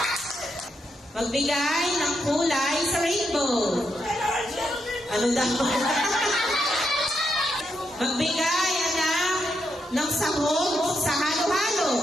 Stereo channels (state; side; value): normal; both; correlation 0.81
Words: Magbigay ng kulay sa rainbow. Ano daw? Magbigay, anak, ng sahog sa halo-halo.